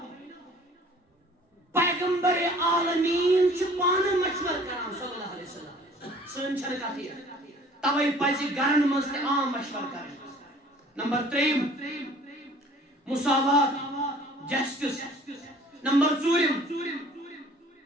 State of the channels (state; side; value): normal; both; correlation 0.51